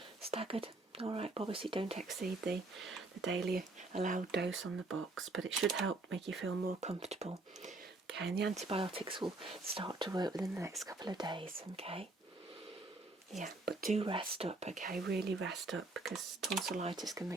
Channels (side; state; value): left; quieter; 3.1 dB